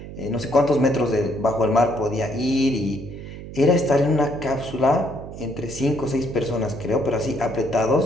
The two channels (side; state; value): right; noise; hum, 12 dB below the sound